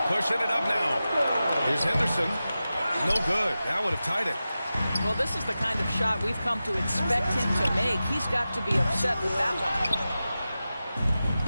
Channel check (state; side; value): inverted; both; correlation -0.94